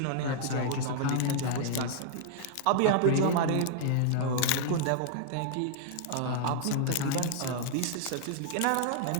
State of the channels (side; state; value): both; different; correlation -0.01